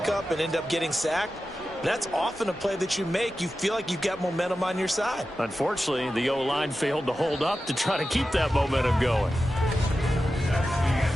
and end up getting sacked. That's often a play that you make. You feel like you've got momentum on your side. Unfortunately, the O-line failed to hold up to try to keep that momentum going.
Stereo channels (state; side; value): normal; both; correlation 0.93